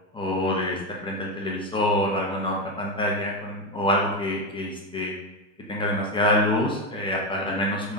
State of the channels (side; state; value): both; normal; correlation 0.12